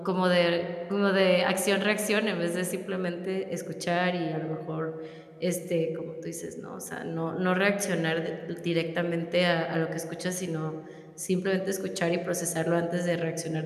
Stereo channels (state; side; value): identical; both; correlation 1.00